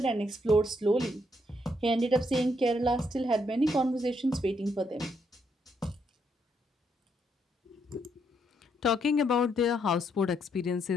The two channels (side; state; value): both; normal; correlation 0.75